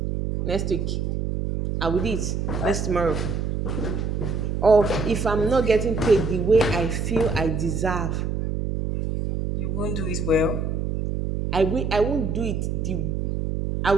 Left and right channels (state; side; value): noise; right; hum, 1 dB below the sound